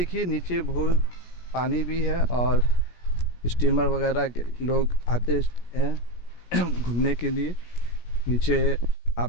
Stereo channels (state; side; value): late; right; 17 ms